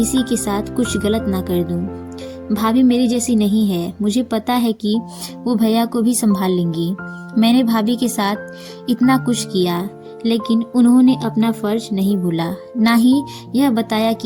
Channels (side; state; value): both; identical; correlation 1.00